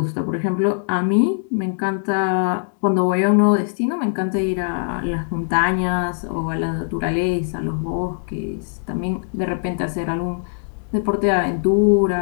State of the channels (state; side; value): silent; right; digital silence